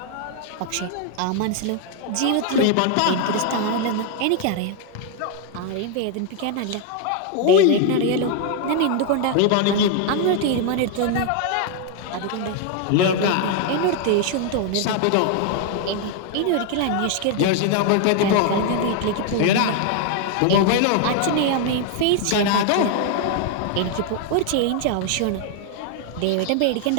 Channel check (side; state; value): both; different; correlation 0.00